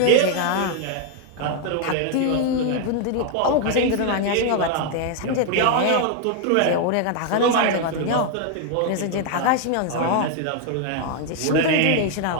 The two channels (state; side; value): different; both; correlation 0.00